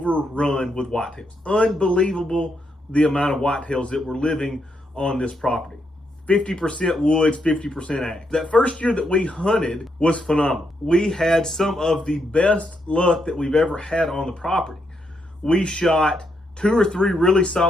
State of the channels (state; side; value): normal; both; correlation 0.79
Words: with whitetails. Unbelievable the amount of whitetails that were living on this property. 50% woods, 50% ag. That first year that we hunted was phenomenal. We had some of the best luck that we've ever had on the property. We shot 2 or 3 really